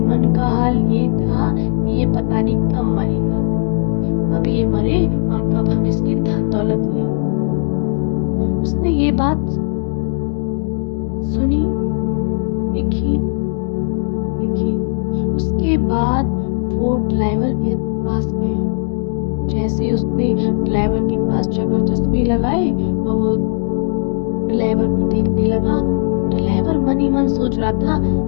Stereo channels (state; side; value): silent; right; 57 dB below the other